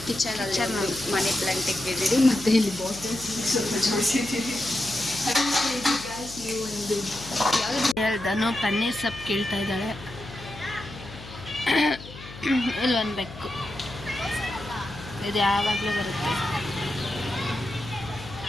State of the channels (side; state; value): left; noise; hum, 15 dB below the sound